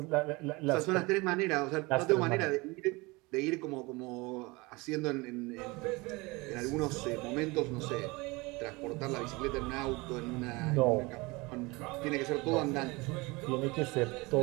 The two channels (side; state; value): left; quieter; 24.4 dB